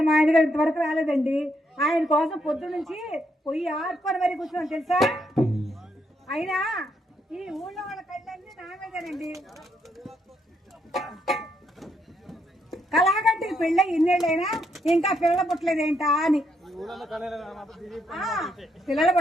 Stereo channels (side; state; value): both; normal; correlation 0.76